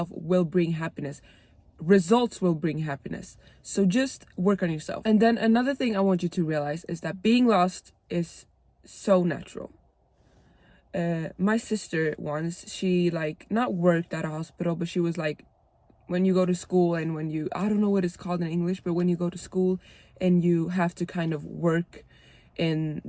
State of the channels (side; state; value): both; identical; correlation 1.00